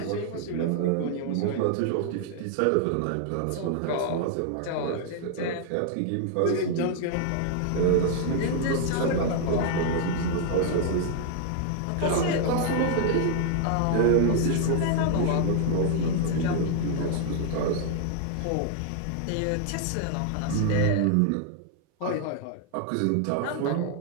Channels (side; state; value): both; different; correlation 0.00